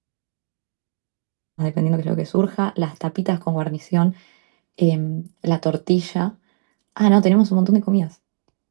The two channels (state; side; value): silent; left; digital silence